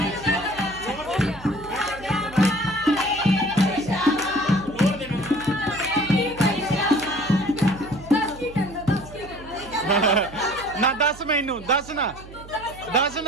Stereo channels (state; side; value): noise; right; hum, 17 dB below the sound